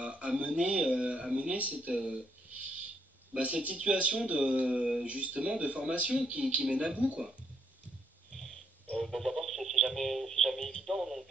mener cette situation justement de formation qui mène à bout, quoi? D'abord, c'est jamais évident, donc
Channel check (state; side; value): normal; both; correlation 0.73